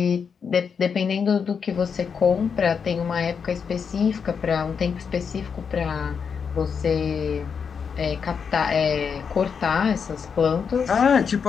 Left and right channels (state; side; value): quieter; right; 6.4 dB